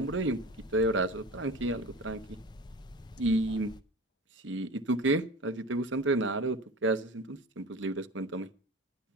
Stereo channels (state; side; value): normal; both; correlation 0.34